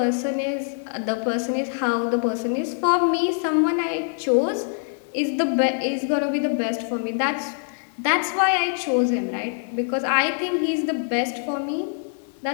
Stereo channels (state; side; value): silent; right; digital silence